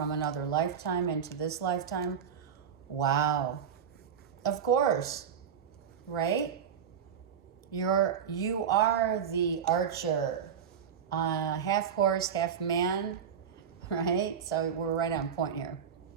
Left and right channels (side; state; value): left; quieter; 7.8 dB